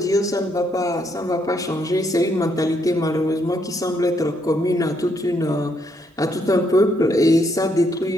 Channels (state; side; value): normal; both; correlation 0.74